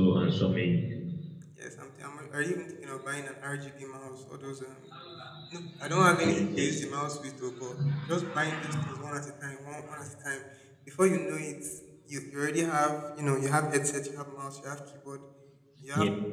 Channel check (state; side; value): identical; both; correlation 1.00